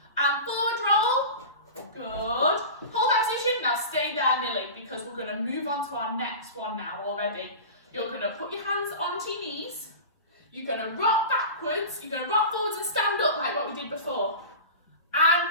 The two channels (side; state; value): both; inverted; correlation -0.32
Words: and forward roll. Good. Hold that position. Now stay there, Millie, because we're going to move on to our next one now already. You're going to put your hands onto your knees. You're going to rock backwards. You're going to rock forwards and stand up like what we did before. And